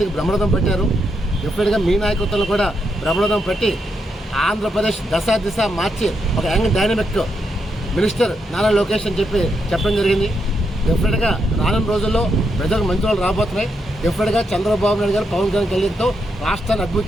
బ్రహ్మరథం పెట్టారు. డెఫినెట్గా మీ నాయకత్వంలో కూడా బ్రహ్మరథం పెట్టి ఆంధ్రప్రదేశ్ దిశ మార్చి ఒక young dynamic minister Nara Lokesh అని చెప్పడం జరిగింది. డెఫినెట్గా రానున్న రోజుల్లో ప్రజలకు మంచి వాళ్ళు రాబోతున్నాయి. డెఫినెట్గా చంద్రబాబు నాయుడు గారు, పవన్ కళ్యాణ్ కలిగితో రాష్ట్రాన్ని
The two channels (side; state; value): both; normal; correlation 0.81